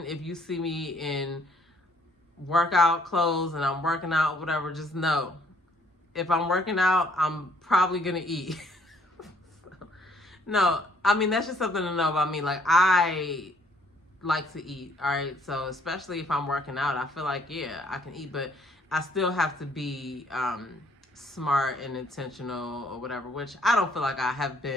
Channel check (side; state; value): both; normal; correlation 0.64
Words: if you see me in workout clothes and I'm working out, whatever, just know, if I'm working out, I'm probably going to eat. No, I mean, that's just something to know about me. I like to eat, all right? So especially if I'm working out, I feel like, yeah, I can eat, but I still have to be smart and intentional or whatever, which I don't feel like I have